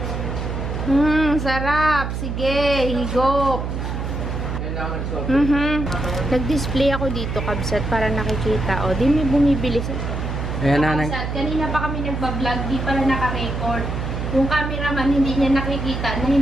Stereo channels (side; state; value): right; noise; hum, 3 dB below the sound